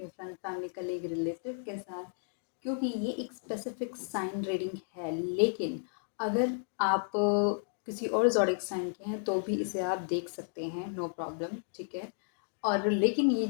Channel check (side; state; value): right; silent; digital silence